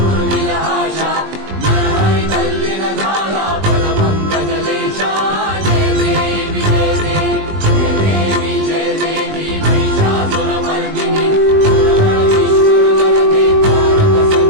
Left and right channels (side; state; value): left; late; 20 ms